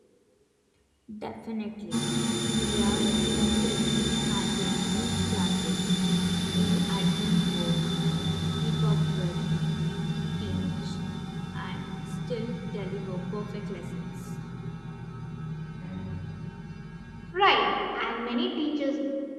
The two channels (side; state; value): both; identical; correlation 1.00